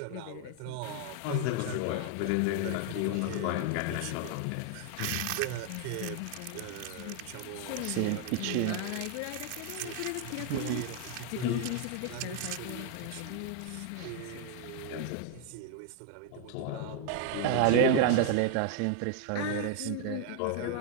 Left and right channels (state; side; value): different; both; correlation 0.00